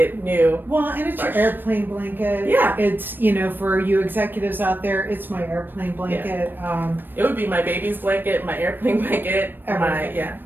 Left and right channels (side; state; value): left; late; 0.094 ms